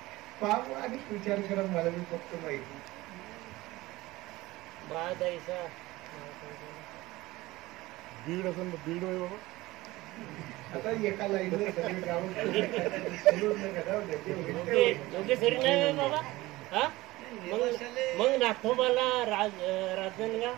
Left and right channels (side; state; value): left; quieter; 19.1 dB